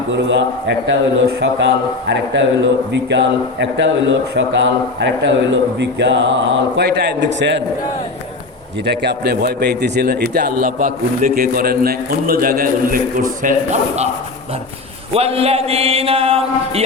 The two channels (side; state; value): right; quieter; 3.5 dB